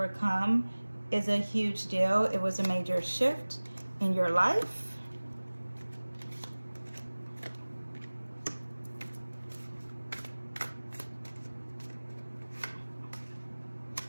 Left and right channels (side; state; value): both; inverted; correlation -1.00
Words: is a huge deal. It was a major shift in your life.